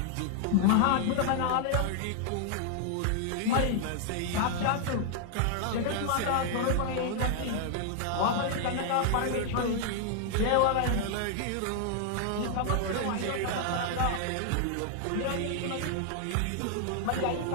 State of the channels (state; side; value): different; both; correlation 0.00